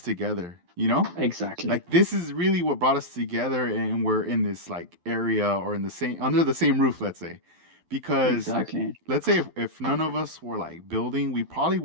together, Exactly, Like, this is really what brought us together, and we're in this like area, or in the same under the same roof, let's say. Because exactly. let's say if none of us were like building, we probably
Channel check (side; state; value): left; late; 12 ms